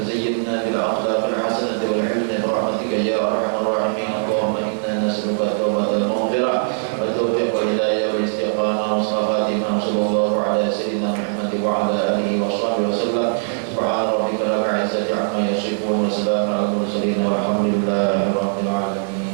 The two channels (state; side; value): silent; left; digital silence